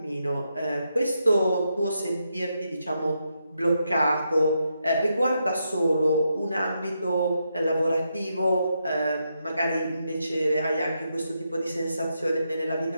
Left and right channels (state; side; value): inverted; both; correlation -0.82